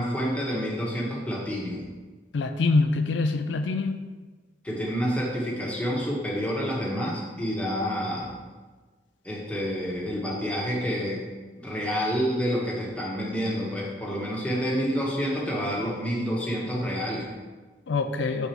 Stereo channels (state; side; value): normal; both; correlation 0.69